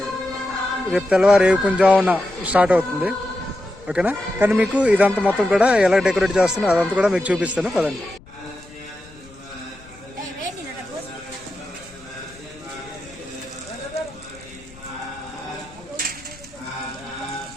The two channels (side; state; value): left; noise; rumble, 23 dB below the sound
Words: రేపు తెల్లవారు కొంచెం స్టార్ట్ అవుతుంది. ఓకేనా, కానీ మీకు ఇదంతా మొత్తం కూడా ఎలా డెకరేట్ చేస్తున్నా అదంతా కూడా మీకు చూపిస్తాను. పదండి.